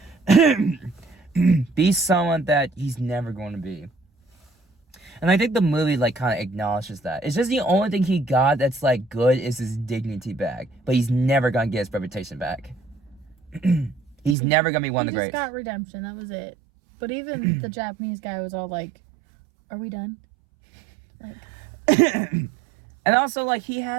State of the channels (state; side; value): drops out; left; at 14.4 s